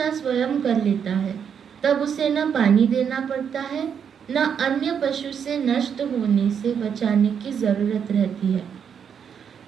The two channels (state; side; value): quieter; left; 7.6 dB